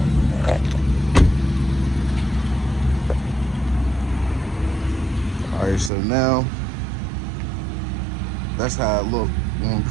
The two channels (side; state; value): left; drops out; at 5.9 s